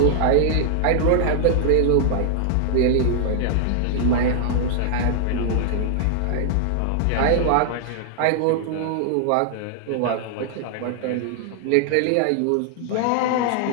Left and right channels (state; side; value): different; both; correlation -0.01